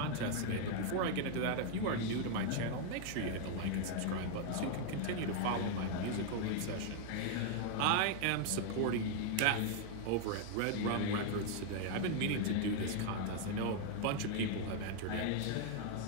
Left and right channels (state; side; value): different; both; correlation 0.00